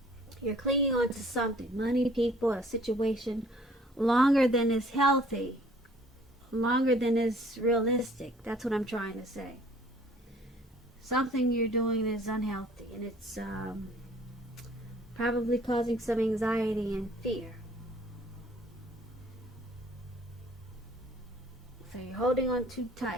You're clinging on to something, money, people, a situation, longer than is healthy, longer than is realistic. That's what I'm trying to say. Something you're doing is unhealthy, and it's probably causing some anxiety and fear. So you're holding on too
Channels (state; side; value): normal; both; correlation 0.56